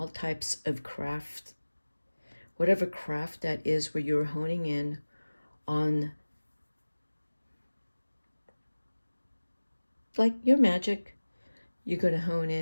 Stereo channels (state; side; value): inverted; both; correlation -1.00